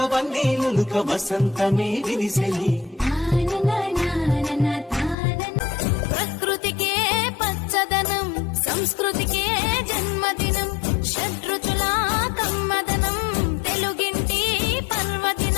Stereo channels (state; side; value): drops out; right; at 5.2 s